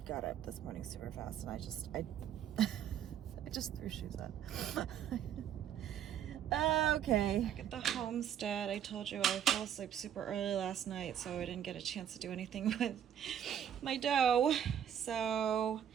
got up this morning super fast, and I just threw shoes on. Okay, back at the homestead. I told you I fell asleep super early last night, so I didn't get a chance to do anything with my dough. So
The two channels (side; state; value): left; quieter; 9.5 dB